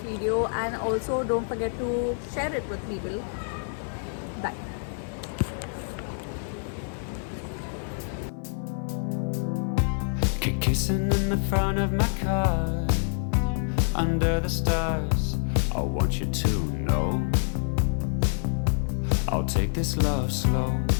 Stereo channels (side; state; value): right; silent; 56 dB below the other